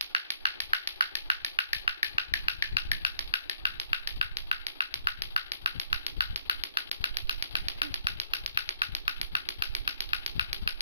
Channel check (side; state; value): both; inverted; correlation -0.68